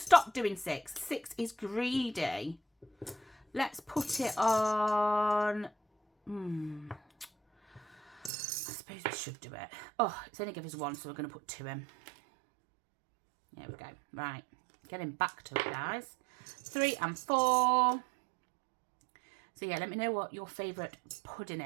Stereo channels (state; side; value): drops out; left; at 8.3 s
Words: stop doing 6? 6 is greedy. Let's put it on. I suppose we should do it. Oh, it's only give us 1, so we're going to put 2 in. There we go. Right, getting back to it, guys. 3 and 4. So yeah, let me know what your favourite pudding